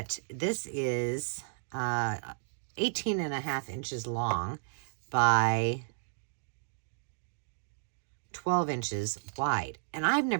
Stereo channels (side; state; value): left; silent; digital silence